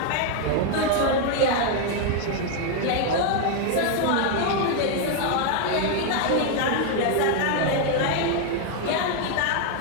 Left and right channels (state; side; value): different; both; correlation 0.00